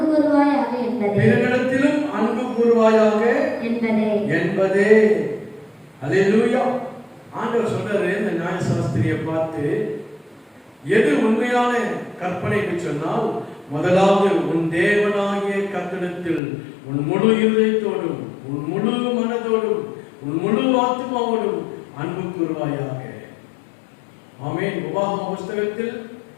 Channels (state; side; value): drops out; right; at 16.4 s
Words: அன்பு கூறுவாயாக என்பதே. அல்லேலூயா. ஆண்டவர் சொல்றாரு இந்த நியாயசாஸ்திரியை பார்த்து, எது உண்மையான கற்பனை என்று சொன்னால், முதலாவது உன் தேவனாகிய கர்த்தரிடத்தில் உன் முழு இதயத்தோடும் உன் முழு மனதோடும் உன் முழு ஆத்மாவோடும் அன்பு கூறுவாயாக. ஆமென். உபாகம புஸ்தகத்தில்